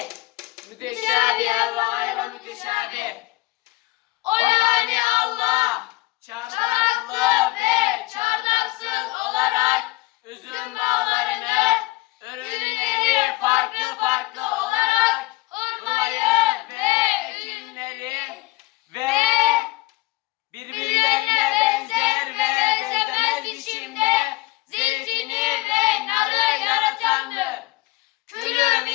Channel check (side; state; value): right; quieter; 21.4 dB